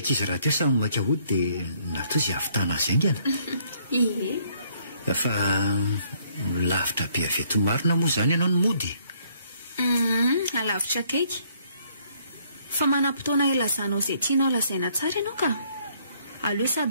raha teo samy maika hody dia natao izay avitana azy aingana fa lavitra be aveto marina moa izany ianao ny mody alavitra kaiky fa manam-potoana ilazanao izay tianao lazaina tsara ianao ka aleo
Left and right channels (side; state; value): both; inverted; correlation -0.66